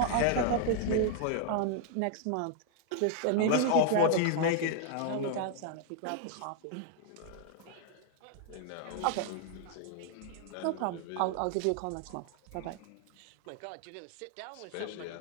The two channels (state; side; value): different; both; correlation 0.00